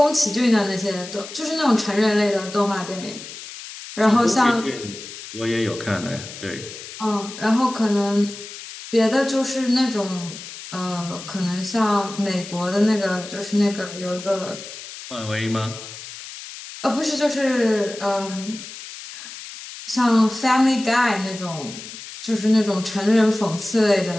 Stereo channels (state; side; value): noise; left; hiss, 13 dB below the sound